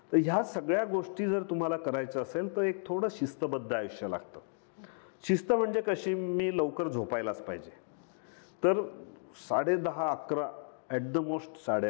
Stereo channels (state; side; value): silent; right; digital silence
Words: तर ह्या सगळ्या गोष्टी जर तुम्हाला करायचं असेल तर एक थोडं शिस्तबद्ध आयुष्य लागतं. शिस्त म्हणजे कशी, मी लवकर झोपायलाच पाहिजे. तर 10:30 11 ॲट द मोस्ट